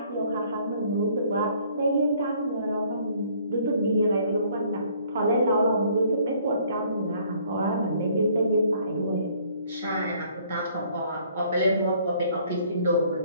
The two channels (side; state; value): both; inverted; correlation -0.61